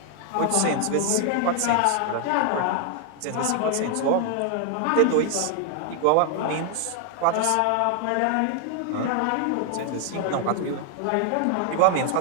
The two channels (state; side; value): different; both; correlation 0.00